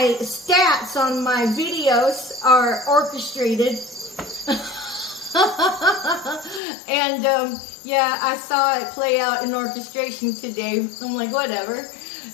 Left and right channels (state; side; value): drops out; right; at 6.6 s